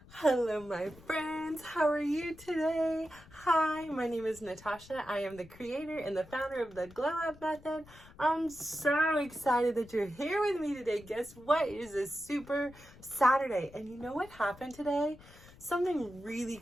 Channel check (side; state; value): left; noise; rumble, 22 dB below the sound